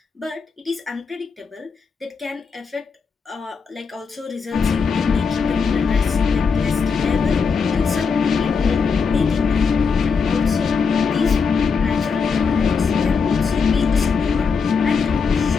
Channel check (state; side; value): quieter; right; 5.5 dB